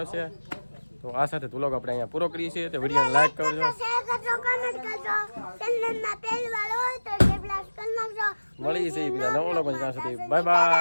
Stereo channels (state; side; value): inverted; both; correlation -1.00